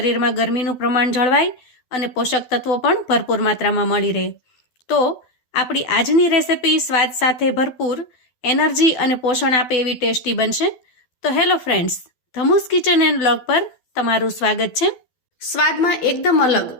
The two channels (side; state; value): right; late; 12 ms